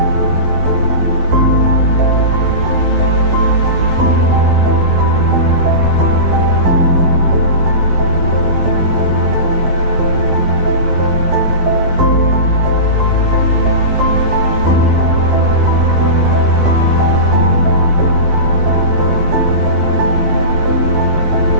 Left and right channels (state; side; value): late; left; 11 ms